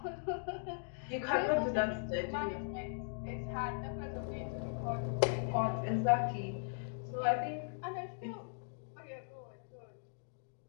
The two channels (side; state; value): right; silent; digital silence